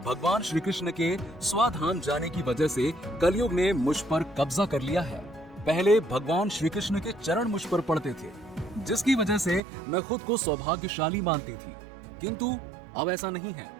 भगवान श्री कृष्ण के स्वाधाम जाने की वजह से कलयुग ने मुझ पर कब्जा कर लिया है। पहले भगवान श्री कृष्ण के चरण मुझ पर पड़ते थे, जिसकी वजह से मैं खुद को सौभाग्यशाली मानती थी, किंतु अब ऐसा नहीं है।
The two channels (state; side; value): drops out; left; at 9.6 s